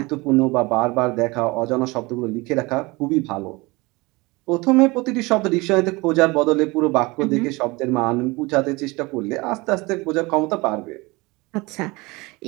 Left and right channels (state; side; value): quieter; left; 24.0 dB